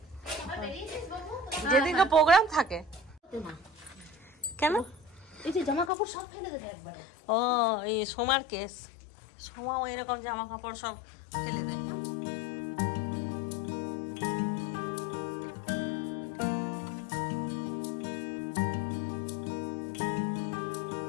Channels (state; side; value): drops out; right; at 5.9 s